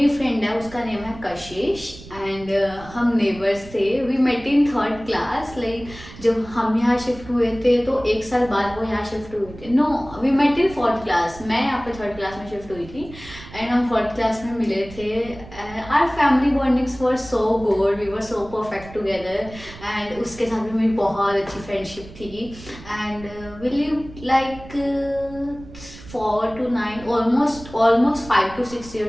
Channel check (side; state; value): right; noise; rumble, 17 dB below the sound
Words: फ्रेंड है उसका नेम है कशिश, एंड हम नेबर्स थे। We met in third class, like जब हम यहाँ शिफ्ट हुए थे तो एक साल बाद वो यहाँ शिफ्ट हुए थे। No, we met in fourth class, मैं यहाँ पे थर्ड क्लास में शिफ्ट हुई थी, एंड हम फोर्थ क्लास में मिले थे। Our family bondings were so good, we were so perfect together, and उसके साथ भी मेरी बहुत अच्छी फ्रेंडशिप थी। And we live like 4 to 9, almost 5 to 6